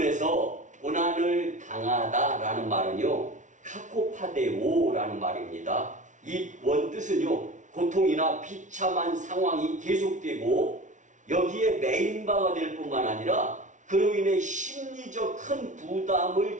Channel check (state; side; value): late; left; 0.36 ms